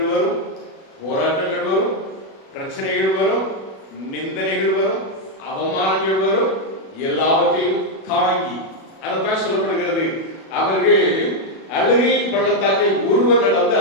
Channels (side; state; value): right; late; 37 ms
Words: வரும், போராட்டங்கள் வரும், பிரச்சனைகள் வரும், நிந்தனைகள் வரும், அவமானங்கள் வரும். எல்லாவற்றையும் தாங்கி, அதைத்தான் சொல்லப்படுகிறது, அவர்கள் அழுகையின் பள்ளத்தாக்கை உருவ நடந்து